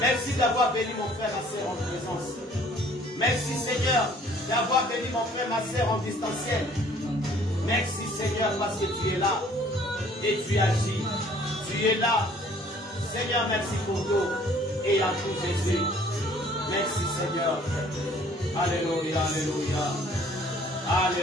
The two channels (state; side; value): normal; both; correlation 0.56